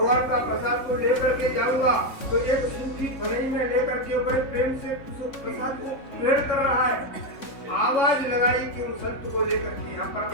का प्रसाद को लेकर के जाऊंगा, तो एक सूखी फरई में लेकर के बड़े प्रेम से उस प्रसाद को ग्रहण कर रहा है। आवाज लगाई कि उन संत को लेकर के यहाँ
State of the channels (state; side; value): late; right; 3.6 ms